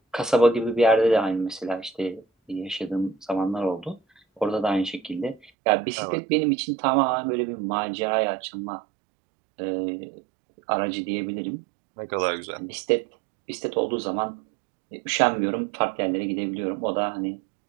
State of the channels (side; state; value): left; drops out; at 5.5 s